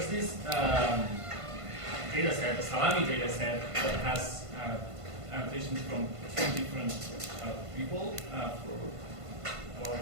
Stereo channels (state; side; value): late; left; 1.5 ms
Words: this data set, the Salami data set, that has annotations from 2 different people for